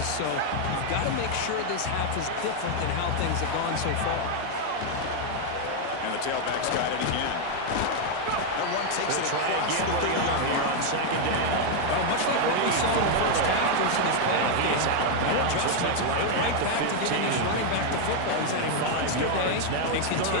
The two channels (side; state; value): both; different; correlation 0.01